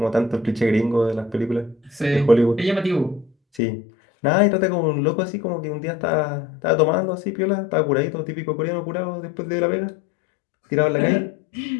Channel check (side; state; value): right; drops out; at 3.6 s